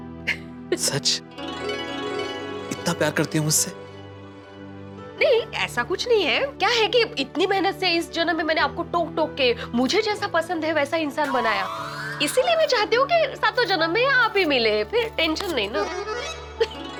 सच? इतना प्यार करती हो मुझसे? नहीं, ऐसा कुछ नहीं है। क्या है कि इतनी मेहनत से इस जन्म में मैंने आपको टोक टोक के मुझे जैसा पसंद है वैसा इंसान बनाया, इसीलिए मैं चाहती हूँ कि सातों जन्म में आप ही मिले, फिर टेंशन नहीं ना।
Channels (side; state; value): both; identical; correlation 1.00